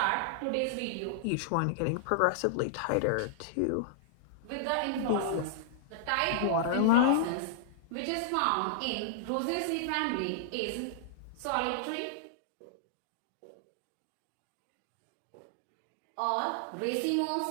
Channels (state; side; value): different; both; correlation -0.01